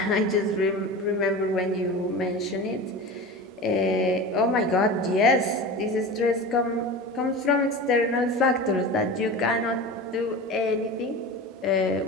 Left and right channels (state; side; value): normal; both; correlation 0.31